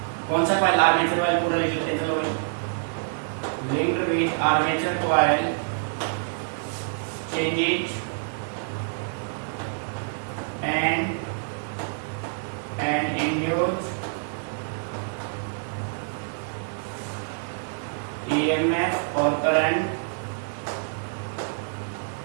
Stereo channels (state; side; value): silent; left; digital silence